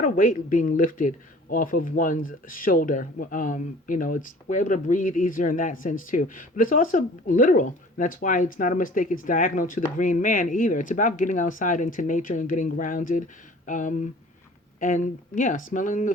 a weight being lifted off of one's shoulder. We're able to breathe easier in that sense too. But it's also literal. That's why it's not a mistake. It's diagonal to the green man either. It's about getting outside into nature and getting grounded. And yeah, smelling the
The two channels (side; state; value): both; normal; correlation 0.48